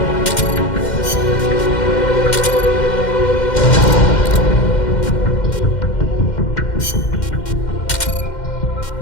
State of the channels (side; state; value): right; late; 2.1 ms